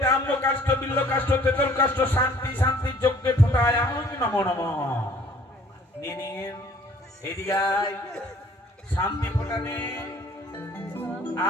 আম্র কাষ্ঠ, বিল্ল কাষ্ঠ, তেতল কাষ্ঠ, শান্তি শান্তি যজ্ঞে ফোটায় আনন্দ নমো নমঃ। নিন এদিকে আয়, শান্তি ফোটানে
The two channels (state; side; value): normal; both; correlation 0.56